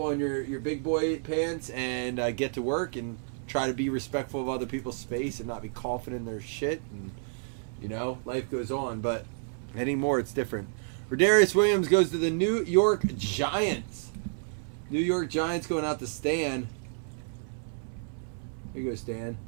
your big boy pants and get to work and try to be respectful of other people's space and not be coughing in their shit, and life goes on. But anymore, it's different. Rodarius Williams goes to the New York Giants. New York Giants going out to Stan. Here you go, Stan.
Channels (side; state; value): left; silent; 58 dB below the other